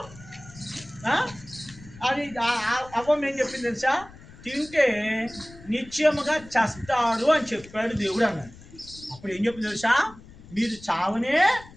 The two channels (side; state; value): left; noise; rumble, 20 dB below the sound